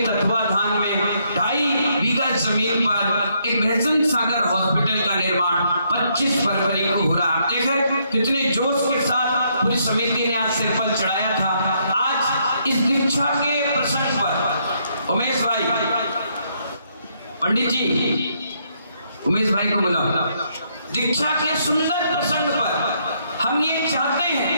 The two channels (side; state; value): both; inverted; correlation -0.73